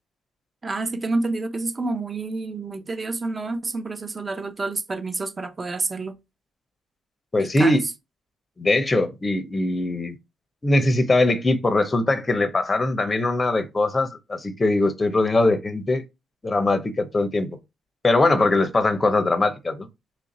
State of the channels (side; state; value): both; normal; correlation 0.90